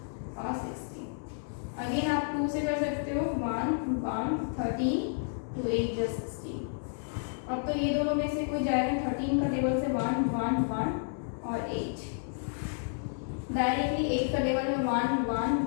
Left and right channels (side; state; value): right; silent; digital silence